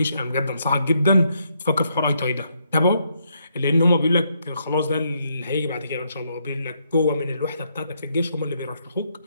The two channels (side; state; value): both; inverted; correlation -0.76